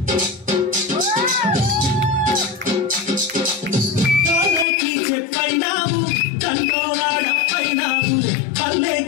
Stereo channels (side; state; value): right; drops out; at 4.7 s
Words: కాలేకి చెప్పైనావు దండోరాడప్పైనావు